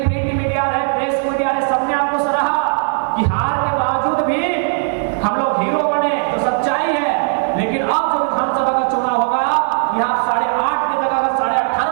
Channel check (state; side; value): silent; left; 68 dB below the other